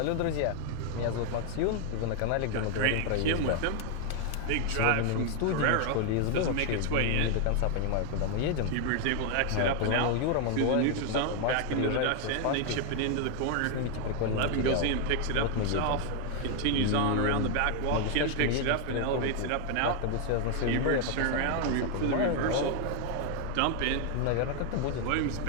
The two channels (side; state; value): both; different; correlation 0.00